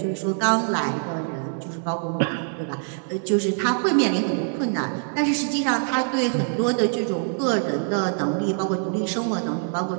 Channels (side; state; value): left; silent; digital silence